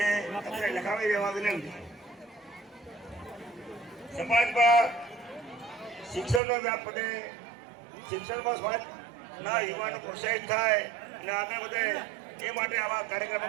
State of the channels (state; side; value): drops out; left; at 6.4 s